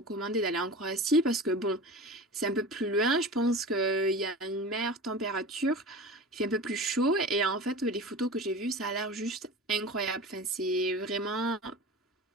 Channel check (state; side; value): normal; both; correlation 0.34